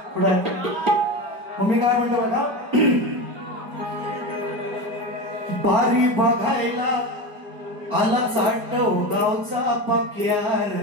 पुढे मग मी काय म्हणतो बघा, बारी बघायला आला चाटव गावचा पक्यार,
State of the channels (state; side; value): late; left; 4.8 ms